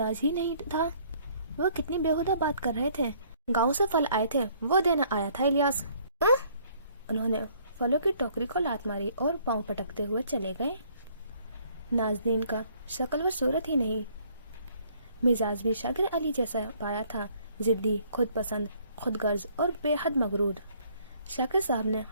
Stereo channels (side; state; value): both; inverted; correlation -0.62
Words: ही नहीं था वो कितनी बेहुदा बात कर रहे थे। गांव से फल आए थे, वो देना आया था इलियास। उन्होंने फलों की टोकरी को लात मारी और पांव पटकते हुए चले गए। नाज़नीन का शक्ल व सूरत ही नहीं, मिजाज भी शाकिर अली जैसा पाया था, जिद्दी, खुद पसंद, खुद गर्ज और बेहद मगरूर। शाकिर साहब ने